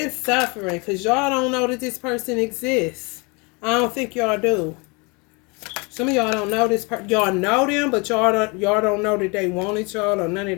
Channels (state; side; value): quieter; right; 29.6 dB